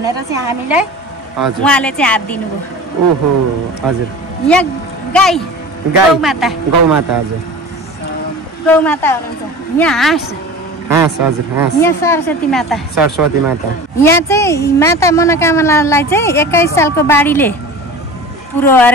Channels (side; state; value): both; normal; correlation 0.36